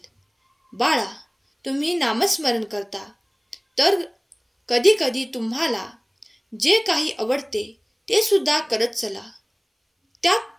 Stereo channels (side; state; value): both; identical; correlation 1.00